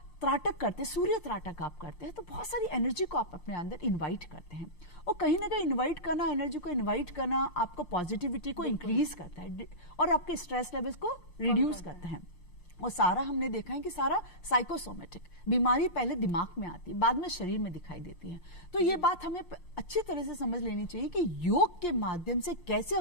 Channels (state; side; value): late; right; 5.7 ms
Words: त्राटक करते हैं, सूर्य त्राटक आप करते हैं, तो बहुत सारी एनर्जी को आप अपने अंदर इनवाइट करते हैं। और कहीं ना कहीं इनवाइट करना, एनर्जी को इनवाइट करना आपको पॉजिटिविटी को इंक्रीज करता है और आपके स्ट्रेस लेवल्स को रिड्यूस करता है। और सारा हमने देखा है कि सारा साइकोसोमेटिक बीमारी पहले दिमाग में आती है, बाद में शरीर में दिखाई देती है। तो ये बात हमें अच्छी तरह से समझ लेनी चाहिए कि योग के माध्यम से कैसे